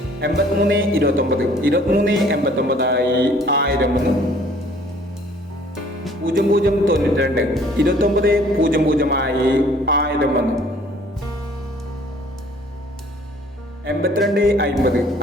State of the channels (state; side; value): normal; both; correlation 0.56